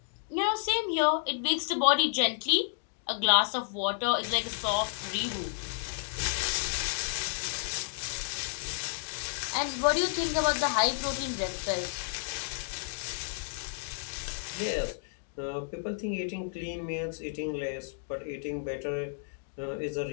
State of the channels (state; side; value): silent; right; digital silence